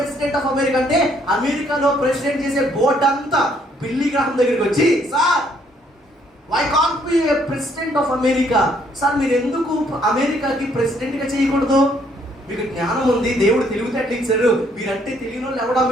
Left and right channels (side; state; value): both; normal; correlation 0.67